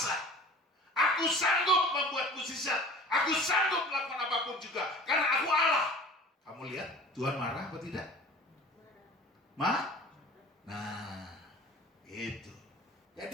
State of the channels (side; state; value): both; normal; correlation 0.42